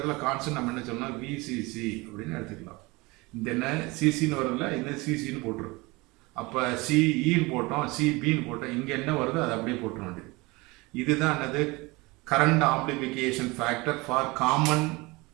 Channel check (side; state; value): left; quieter; 23.9 dB